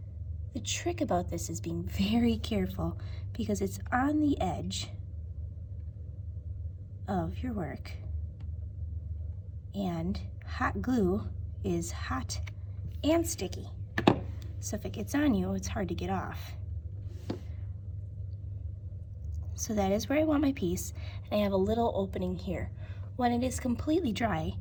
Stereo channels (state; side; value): identical; both; correlation 1.00